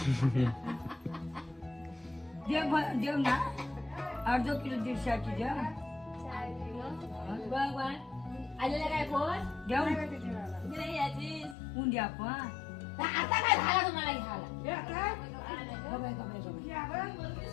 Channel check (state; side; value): drops out; right; at 11.6 s